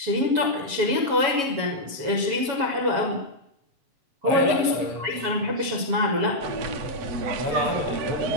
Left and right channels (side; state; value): left; late; 7.2 ms